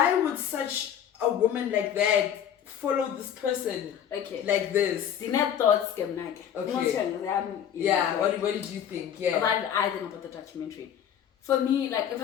would such a woman like that follow this person like this? Dinner thoughts came Okay. Yeah, what did you think? Yeah. What I think about the documentary. For me, like, if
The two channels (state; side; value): quieter; right; 9.3 dB